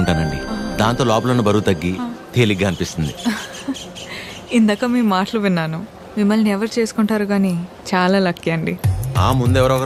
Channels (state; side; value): identical; both; correlation 1.00